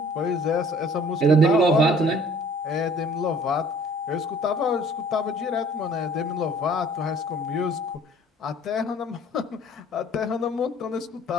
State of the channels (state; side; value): normal; both; correlation 0.54